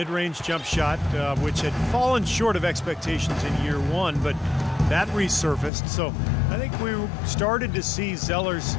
jump shot, which had fallen short of expectations in year one, but that resurfaced. So I think we started to see Zeller's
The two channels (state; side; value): drops out; right; at 5.7 s